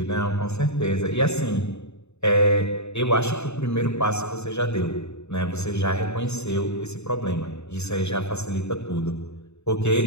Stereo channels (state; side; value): late; right; 0.81 ms